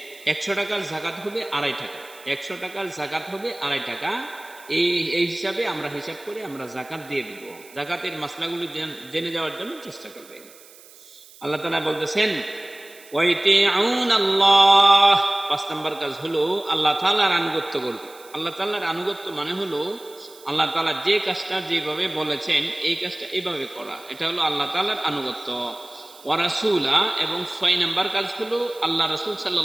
100 টাকার যাকাত হবে 2.5 টাকা, 100 টাকার যাকাত হবে 2.5 টাকা। এই হিসাবে আমরা হিসাব করে আমরা যাকাত দিয়ে দিব। যাকাতের মাসলাগুলো জেনে যাওয়ার জন্য চেষ্টা করবেন। আল্লাহ তাআলা বলতেছেন ওয়াইতিউনাল্লাহ, 5 নম্বর কাজ হলো আল্লাহ তাআলার আনুগত্য করবে। আল্লাহ তাআলার আনুগত্য মানে হলো আল্লাহ তাআলা যে কাজটা যেভাবে বলেছেন এই কাজটা এইভাবে করা, এটা হলো আল্লাহ তাআলার আনুগত্য। ওয়া রাসূলা, এবং 6 নম্বর কাজ হলো আল্লাহ রাসূল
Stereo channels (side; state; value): right; noise; hiss, 22 dB below the sound